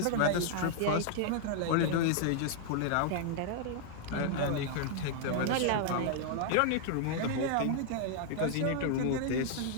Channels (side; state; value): both; different; correlation 0.00